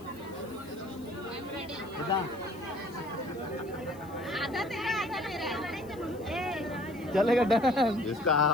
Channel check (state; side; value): noise; left; hiss, 25 dB below the sound